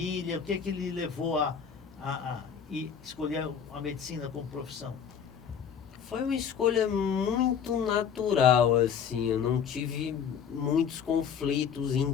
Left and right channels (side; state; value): right; quieter; 7.6 dB